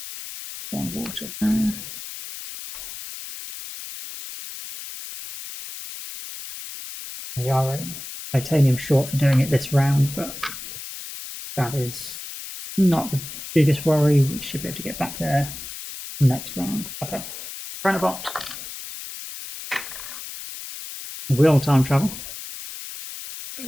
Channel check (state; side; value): noise; left; hiss, 11 dB below the sound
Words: 1 water there. We are a titanium short for doing it this round, but that is not the biggest worry. We should be able to get back there next round. Okay, Chronobot will time travel. Get